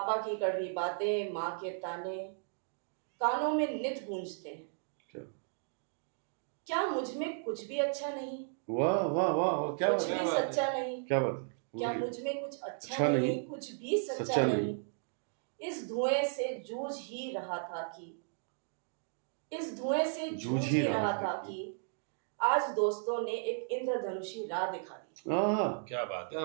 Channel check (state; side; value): silent; left; digital silence